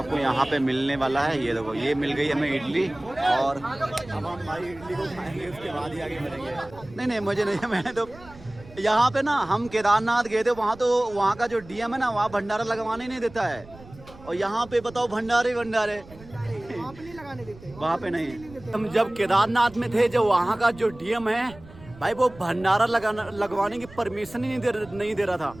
यहाँ पे मिलने वाला है। ये देखो ये मिल गई हमें इडली और अब हम भाई इडली को खाएंगे, उसके बाद ही आगे मिलेंगे। नहीं मुझे नहीं, मैंने तो यहाँ पे ना हम केदारनाथ गए थे, वहाँ तो वहाँ का जो DM है ना, वहाँ भंडारा लगवाने नहीं देता है। और यहाँ पे बताओ भंडारे वहाँ पे नहीं। हम जब केदारनाथ में थे, जो वहाँ का जो DM है भाई, वो भंडारा लगवाने की परमिशन ही नहीं दे रहा था।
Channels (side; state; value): right; noise; rumble, 20 dB below the sound